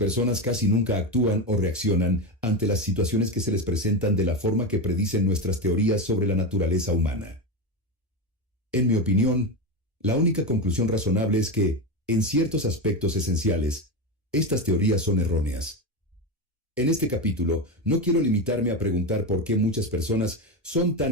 casi nunca actúan o reaccionan ante las situaciones que se les presentan de la forma que predicen nuestras teorías sobre la naturaleza humana. En mi opinión, la única conclusión razonable es que, en ciertos aspectos esenciales, estas teorías son erróneas. En este capítulo, no quiero limitarme a preguntar por qué muchas personas son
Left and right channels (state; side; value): normal; both; correlation 0.15